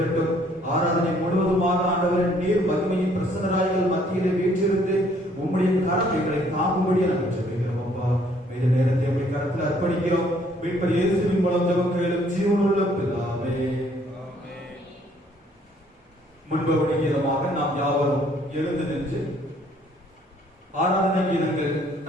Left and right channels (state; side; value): normal; both; correlation 0.63